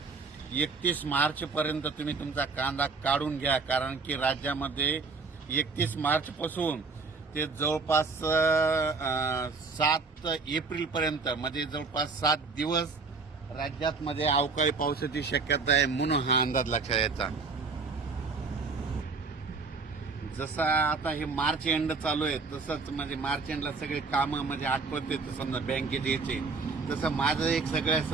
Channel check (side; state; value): left; quieter; 4.3 dB